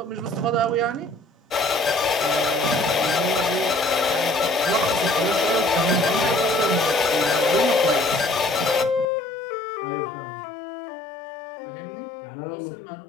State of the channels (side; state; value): right; drops out; at 9.1 s